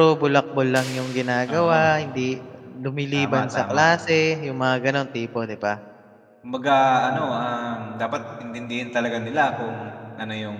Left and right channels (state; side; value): identical; both; correlation 1.00